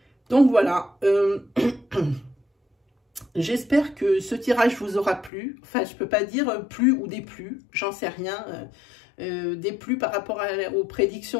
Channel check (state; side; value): drops out; right; at 5.3 s